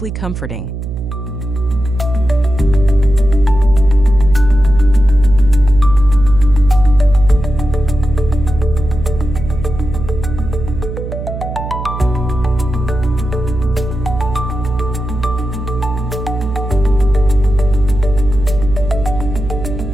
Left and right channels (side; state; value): right; noise; hum, 7 dB below the sound